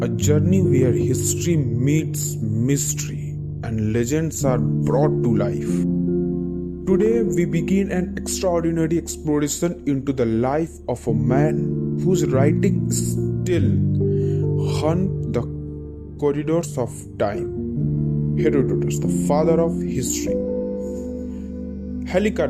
a journey where history meets mystery and legends are brought to life. Today, we begin an extraordinary exploration into the life of a man whose writing still haunt the corridors of time. Herodotus, the father of history.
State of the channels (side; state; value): both; identical; correlation 1.00